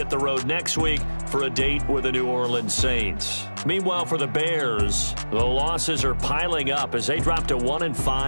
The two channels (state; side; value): inverted; both; correlation -1.00